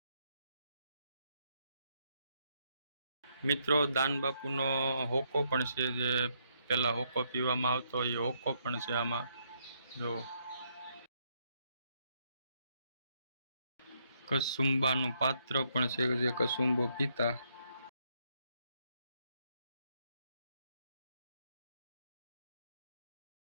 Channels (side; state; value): both; inverted; correlation -0.75